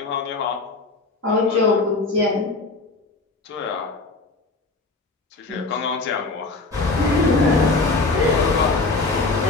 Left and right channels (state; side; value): quieter; right; 3.5 dB